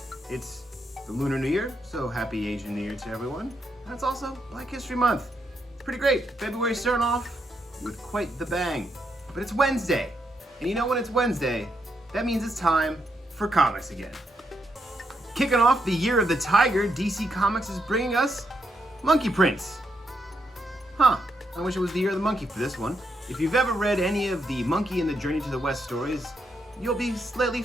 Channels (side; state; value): both; normal; correlation 0.79